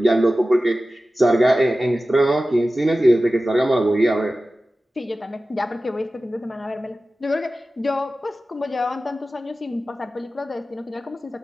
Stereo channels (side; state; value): both; normal; correlation 0.95